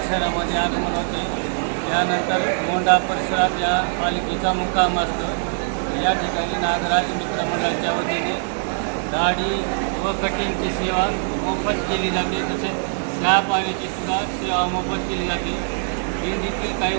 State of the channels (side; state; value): left; silent; digital silence